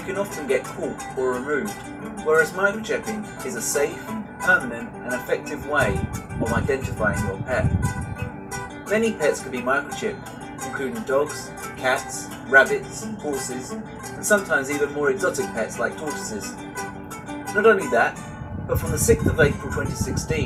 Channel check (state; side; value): identical; both; correlation 1.00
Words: often get caught or removed, whereas microchipping is a safe, permanent and effective way of identifying your pet. Many pets can be microchipped, including dogs, cats, rabbits, horses, and sometimes even more exotic pets like tortoises. Not only that, but from the 6th of April